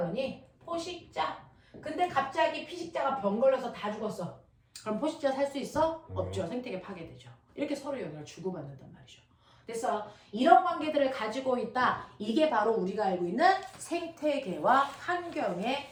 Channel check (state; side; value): identical; both; correlation 1.00